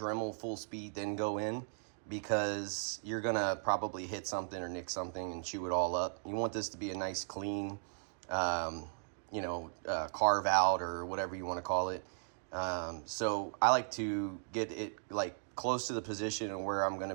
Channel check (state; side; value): silent; left; digital silence